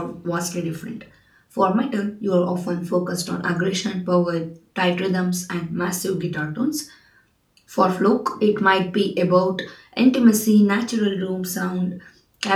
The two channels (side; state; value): both; identical; correlation 1.00